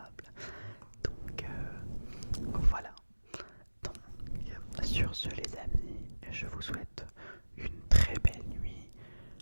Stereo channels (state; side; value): inverted; both; correlation -1.00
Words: Donc voilà. Donc sur ce les amis, je vous souhaite une très belle nuit.